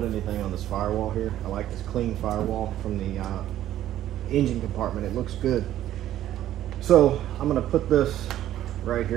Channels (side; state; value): left; quieter; 12.7 dB